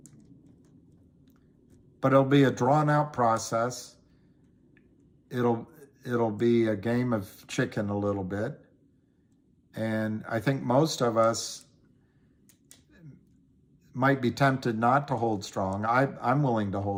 But it'll be a drawn-out process. It'll be a game of chicken a little bit. And I think most of us might be tempted not to hold strong. I'm willing to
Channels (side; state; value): both; identical; correlation 1.00